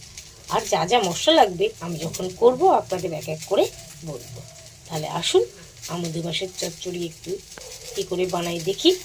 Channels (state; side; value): identical; both; correlation 1.00